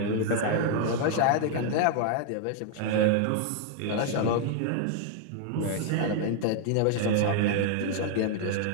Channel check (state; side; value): different; both; correlation 0.00